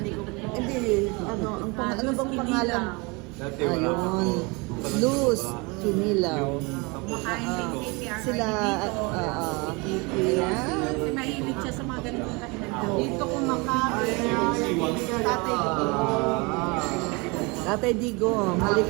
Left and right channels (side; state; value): left; quieter; 27.9 dB